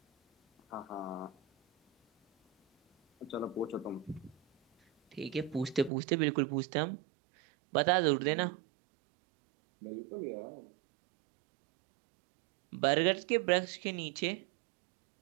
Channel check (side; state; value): left; drops out; at 5.9 s